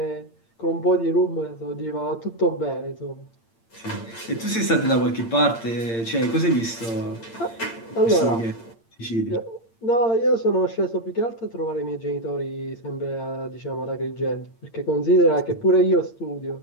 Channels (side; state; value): right; late; 8.8 ms